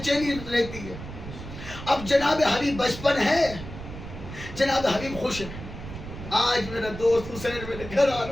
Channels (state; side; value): noise; right; rumble, 11 dB below the sound